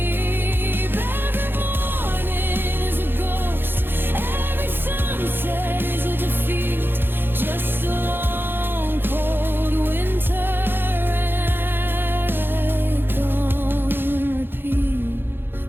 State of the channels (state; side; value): late; left; 0.10 ms